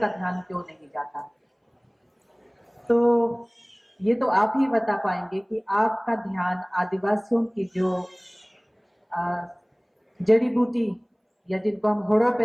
ध्यान क्यों नहीं जाता। तो ये तो आप ही बता पाएंगे कि आपका ध्यान आदिवासियों की जो जड़ी बूटी या जिनको हम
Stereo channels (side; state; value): both; identical; correlation 1.00